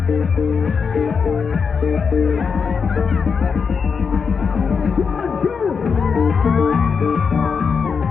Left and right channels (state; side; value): quieter; right; 5.8 dB